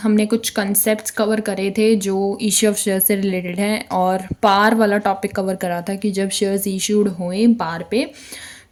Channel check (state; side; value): identical; both; correlation 1.00